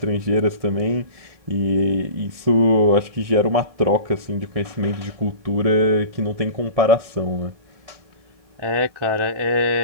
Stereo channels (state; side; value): late; left; 1.7 ms